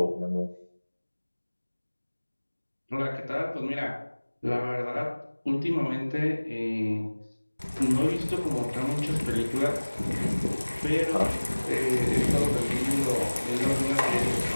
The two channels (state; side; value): inverted; both; correlation -1.00